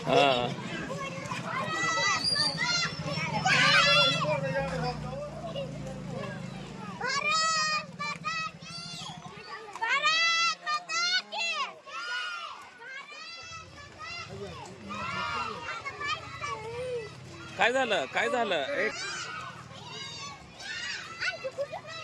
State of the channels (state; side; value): identical; both; correlation 1.00